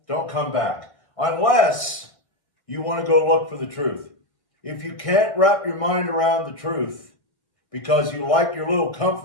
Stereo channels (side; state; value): right; late; 1.6 ms